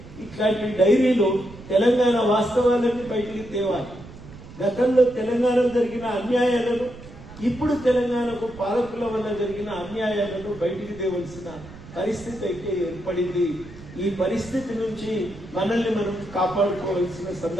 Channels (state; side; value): noise; right; rumble, 17 dB below the sound